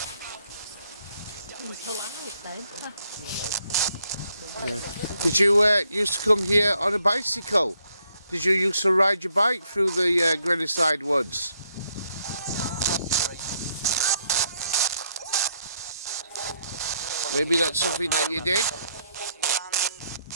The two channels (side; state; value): both; inverted; correlation -0.72